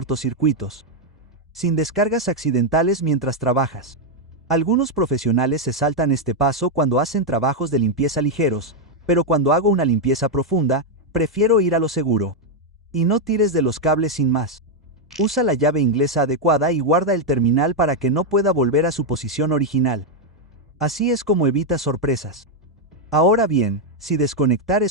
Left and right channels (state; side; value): normal; both; correlation 0.01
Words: Sin descargas accidentales mientras trabajas. Algunos profesionales se saltan este paso cuando hacen trabajos de limpieza ligeros, pero cuando hago una limpieza profunda, prefiero ir a lo seguro. Y no tires de los cables sin más. Usa la llave inglesa adecuada y guarda el terminal para que no pueda volver a su posición original. Así es como evita sorpresas. Ahora bien, si desconectar